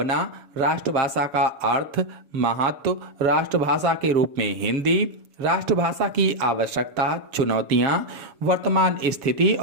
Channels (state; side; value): late; left; 7.1 ms